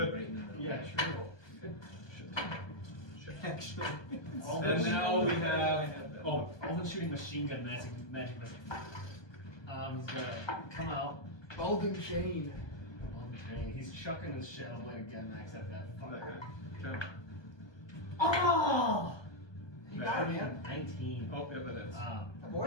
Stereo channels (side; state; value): right; late; 1.2 ms